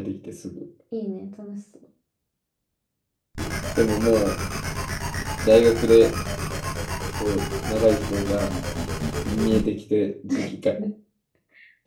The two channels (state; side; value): identical; both; correlation 1.00